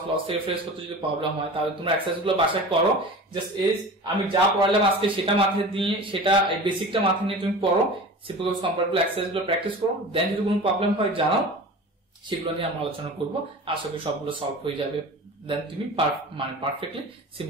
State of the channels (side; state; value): both; normal; correlation 0.35